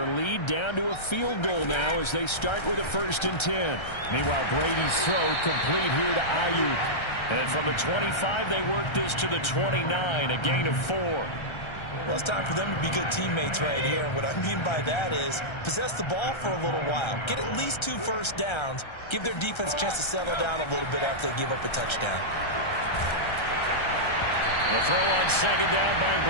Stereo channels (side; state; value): right; late; 1.3 ms